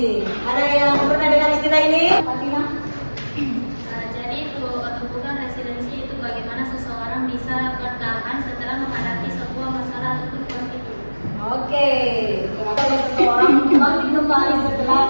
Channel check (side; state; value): both; inverted; correlation -1.00